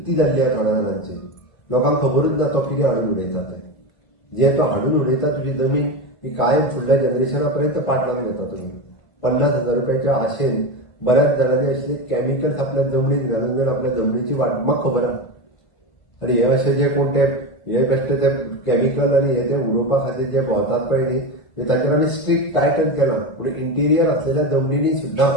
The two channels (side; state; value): right; late; 1.5 ms